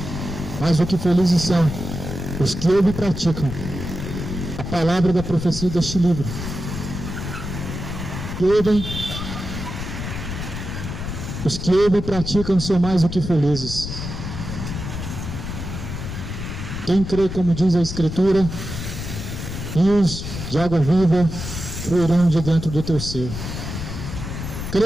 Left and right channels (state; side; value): noise; left; rumble, 6 dB below the sound